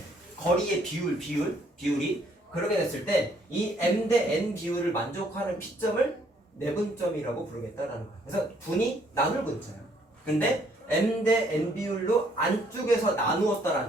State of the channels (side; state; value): both; normal; correlation 0.66